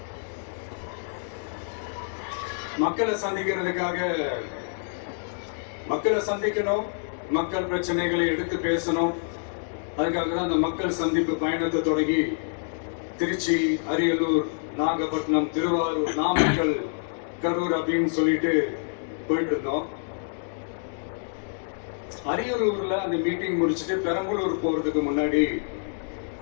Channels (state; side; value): silent; right; digital silence